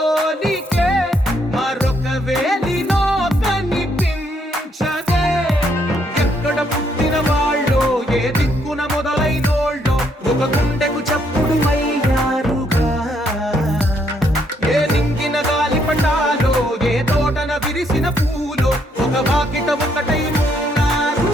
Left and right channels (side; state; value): both; normal; correlation 0.72